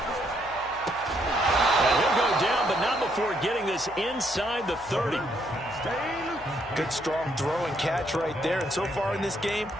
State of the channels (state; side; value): noise; left; hum, 21 dB below the sound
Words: And he'll go down, but not before getting this inside the 30. Good, strong throw and catch right there. And so far in this game,